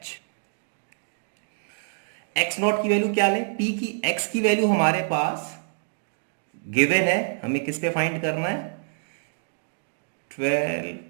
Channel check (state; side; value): silent; left; digital silence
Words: X naught की वैल्यू क्या लें, p की x की वैल्यू हमारे पास गिवन है, हमें किस पे फाइंड करना है,